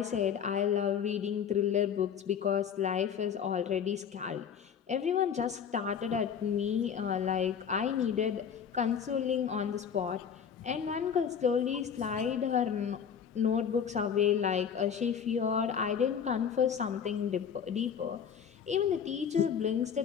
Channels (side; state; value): right; quieter; 7.6 dB